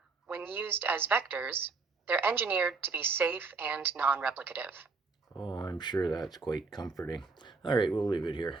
when used as vectors, they're engineered to be safe and non-replicative. Oh, I'm sure that's quite comforting. All right, we'll leave it here.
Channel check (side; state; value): left; quieter; 4.3 dB